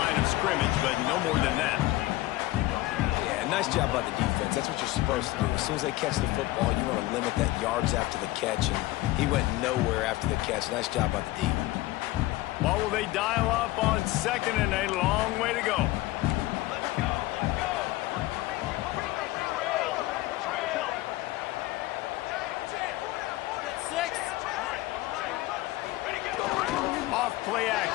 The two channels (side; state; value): right; quieter; 17.9 dB